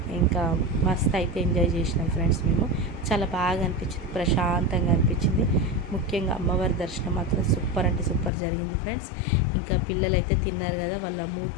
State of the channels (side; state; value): right; drops out; at 8.3 s